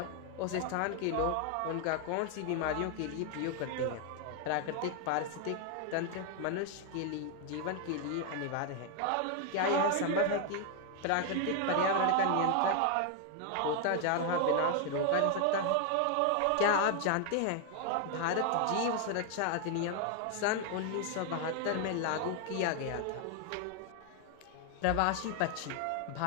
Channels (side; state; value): both; different; correlation 0.00